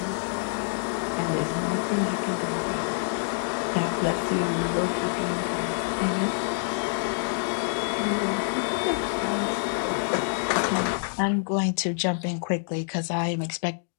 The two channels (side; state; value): right; silent; digital silence